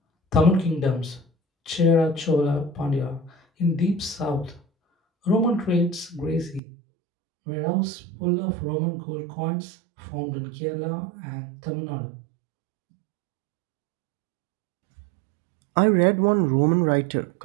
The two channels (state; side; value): drops out; left; at 6.6 s